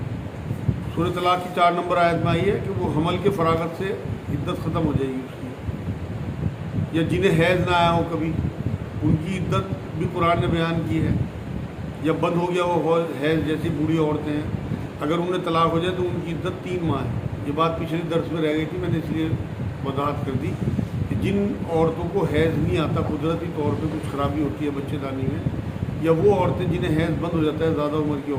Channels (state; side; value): identical; both; correlation 1.00